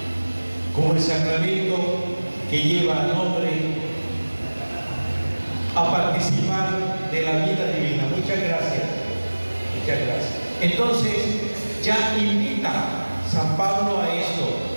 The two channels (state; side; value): inverted; both; correlation -1.00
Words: como el sacramento que lleva al hombre a participar de la vida divina. Muchas gracias. Muchas gracias. Entonces, ya invita San Pablo a esto,